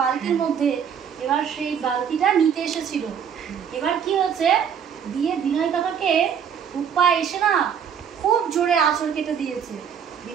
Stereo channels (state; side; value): quieter; left; 7.8 dB